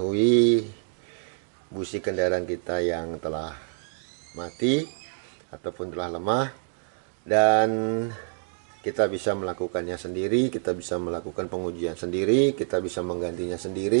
busi kendaraan kita yang telah mati ataupun telah lemah. Dan kita bisa melakukannya sendiri, kita bisa melakukan pengujian sendiri, kita bisa menggantinya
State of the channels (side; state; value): left; silent; digital silence